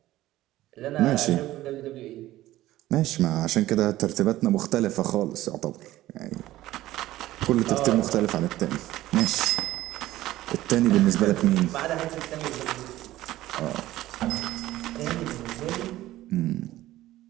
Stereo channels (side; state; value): left; quieter; 15.5 dB